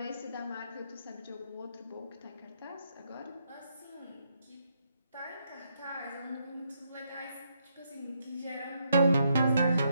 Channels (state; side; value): inverted; both; correlation -0.77